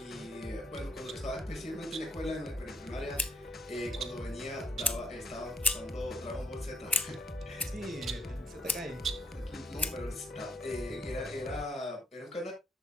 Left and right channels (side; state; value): both; normal; correlation 0.69